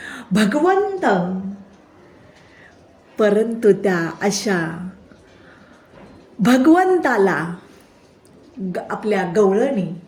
भगवंत, परंतु त्या अशा भगवंताला आपल्या गवळणी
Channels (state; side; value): identical; both; correlation 1.00